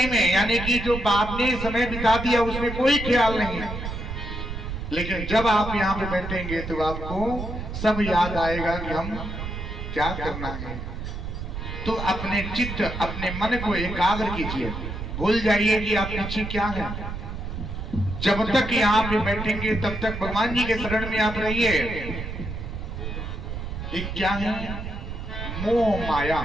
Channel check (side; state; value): right; noise; rumble, 6 dB below the sound